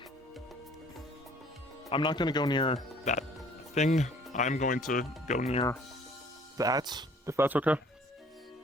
I'm not gonna go near that thing. I'm going to go near that, if that's okay.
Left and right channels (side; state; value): both; normal; correlation 0.55